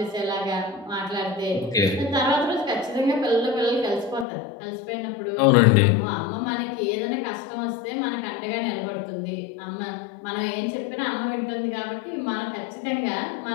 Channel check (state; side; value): drops out; right; at 4.2 s